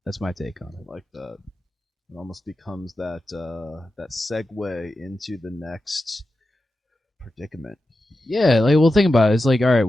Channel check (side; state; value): both; normal; correlation 0.91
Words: that's my take on it. I like that. It almost becomes that segue into the next predicament. Yeah, like, well, think about it. It's like, all right,